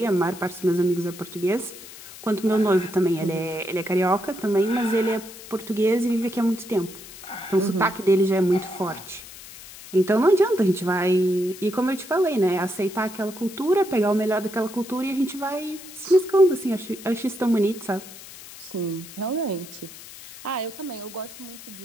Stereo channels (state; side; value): noise; left; hiss, 16 dB below the sound